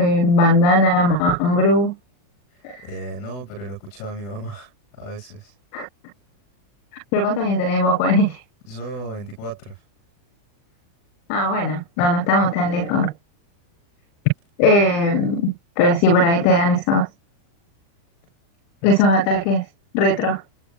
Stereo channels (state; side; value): late; right; 40 ms